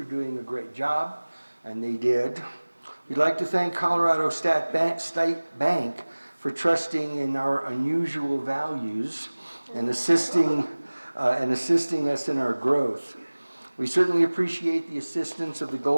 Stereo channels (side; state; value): both; inverted; correlation -1.00